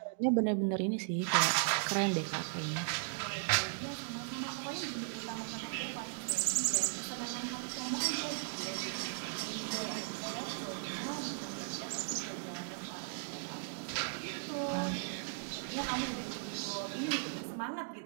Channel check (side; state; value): left; silent; digital silence